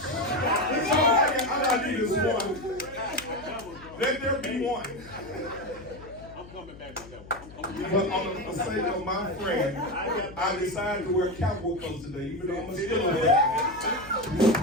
all I need is one. Let there be one. I'm coming back to that one. But on the sake of my friend, I decided to wear cowboy clothes today, even though I'm still a man.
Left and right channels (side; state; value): left; noise; hum, 18 dB below the sound